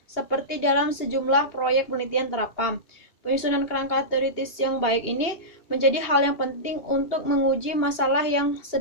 seperti dalam sejumlah proyek penelitian terapan. Penyusunan kerangka teoritis yang baik ini menjadi hal yang penting untuk menguji masalah yang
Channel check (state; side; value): late; right; 2.8 ms